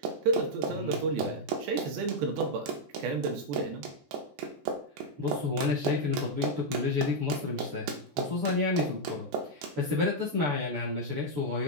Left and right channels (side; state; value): left; late; 14 ms